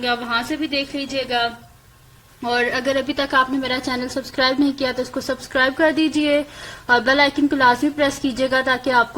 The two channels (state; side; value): identical; both; correlation 1.00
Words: आप वहां से भी देख लीजिएगा। और अगर अभी तक आपने मेरा चैनल सब्सक्राइब नहीं किया तो इसको सब्सक्राइब कर दीजिए और बेल आइकन को लाजमी प्रेस कीजिएगा ताकि